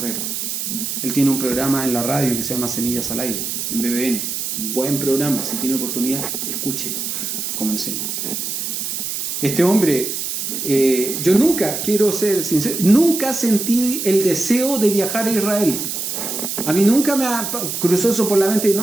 Él tiene un programa en la radio que se llama Semillas al Aire, en BBN. Un buen programa, si tiene oportunidad, escuche cómo enseña. Este hombre, yo nunca, quiero ser sincero, nunca sentí el deseo de viajar a Israel. A mí nunca me cruzó eso por la mente,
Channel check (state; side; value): noise; right; hiss, 3 dB below the sound